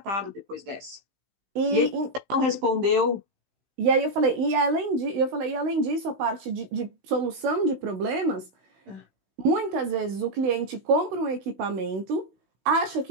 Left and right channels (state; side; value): late; left; 16 ms